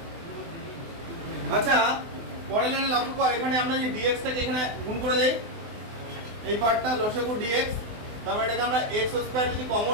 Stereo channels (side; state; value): left; late; 24 ms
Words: আচ্ছা পরের লাইনে লক্ষ্য কর, এখানে আমরা যে dx টাকে এখানে গুণ করে দেই, এই পার্টটা লসাগু dx, তারপর এটাকে আমরা x স্কয়ার যদি